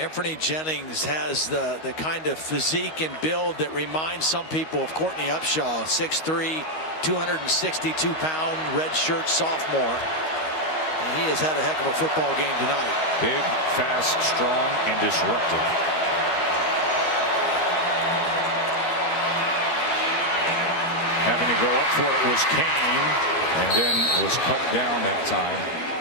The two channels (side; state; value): right; late; 13 ms